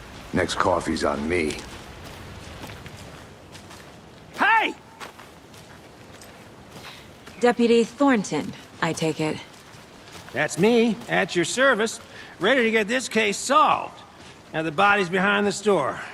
next coffee's on me. Hey! Deputy Thornton, I take it. That's me, at your service, ready to get this case solved. Now the body's behind the store.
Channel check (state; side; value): identical; both; correlation 1.00